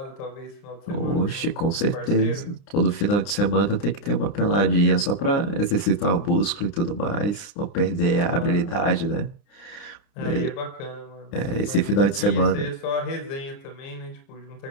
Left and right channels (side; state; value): right; late; 30 ms